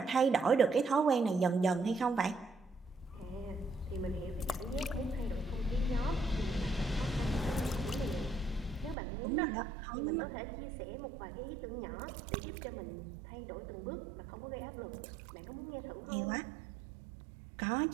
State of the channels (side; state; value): left; drops out; at 9.0 s